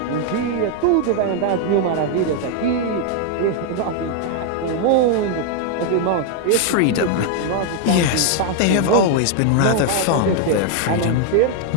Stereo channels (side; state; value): both; different; correlation 0.00